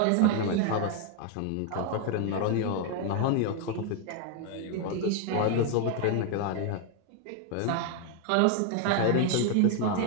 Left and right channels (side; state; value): both; different; correlation 0.00